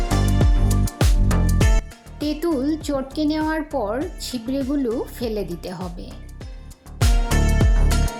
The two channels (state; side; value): identical; both; correlation 1.00